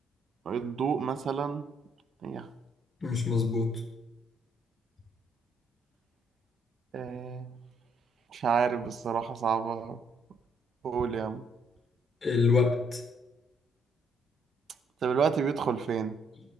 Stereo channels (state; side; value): normal; both; correlation 0.69